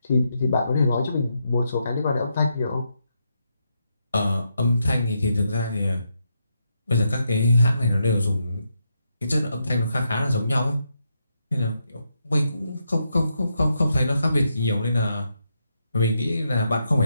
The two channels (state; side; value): inverted; both; correlation -0.82